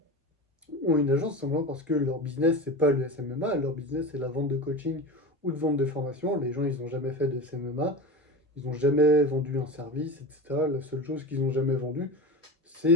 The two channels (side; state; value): both; normal; correlation 0.28